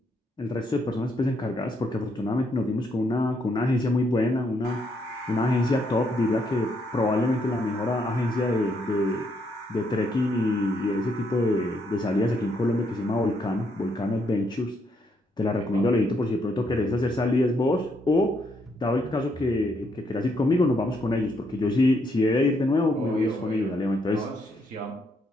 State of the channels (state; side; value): normal; both; correlation 0.74